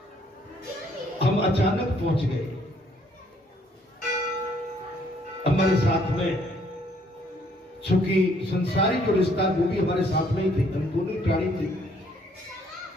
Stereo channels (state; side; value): normal; both; correlation 0.65